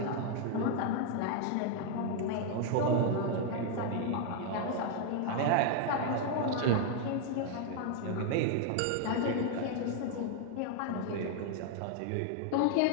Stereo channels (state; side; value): different; both; correlation 0.00